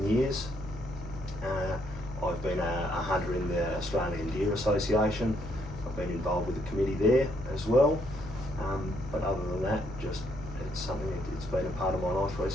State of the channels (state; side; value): normal; both; correlation 0.72